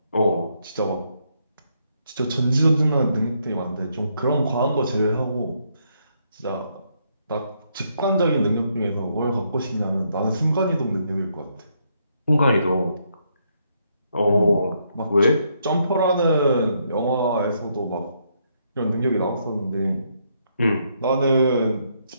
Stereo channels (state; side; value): inverted; both; correlation -0.75